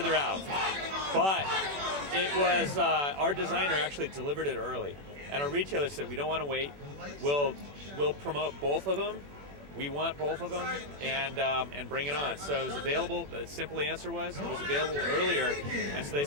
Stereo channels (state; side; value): late; left; 21 ms